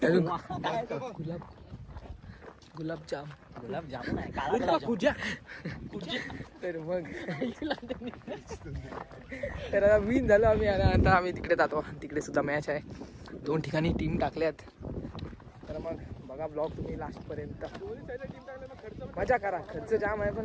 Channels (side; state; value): both; identical; correlation 1.00